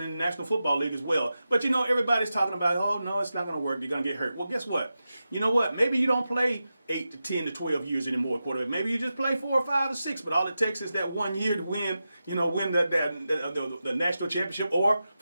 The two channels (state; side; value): inverted; both; correlation -0.91